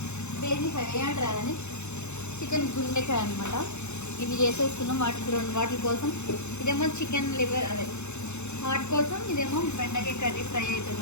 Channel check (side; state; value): right; late; 0.82 ms